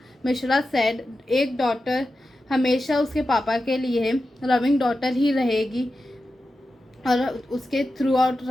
Mishra said, एक डॉटर हमेशा उसके पापा के लिए loving daughter ही रहेगी और उसके through out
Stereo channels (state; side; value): normal; both; correlation 0.91